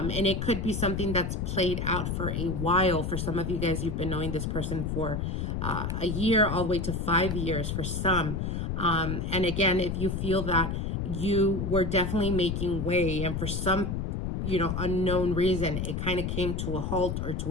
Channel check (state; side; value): noise; left; rumble, 2 dB below the sound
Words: it could be something that's played out for a while. For some of you guys, you've been knowing this person for a year, all the way to 5 years for some. And again, if you feel that you were definitely making way, and for some, unknown reason, it kind of came to a halt or